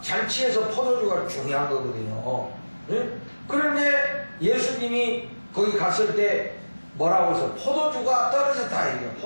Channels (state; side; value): inverted; both; correlation -1.00